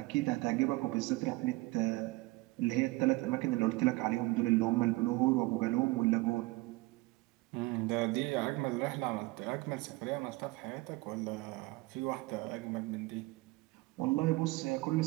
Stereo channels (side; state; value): left; quieter; 22.1 dB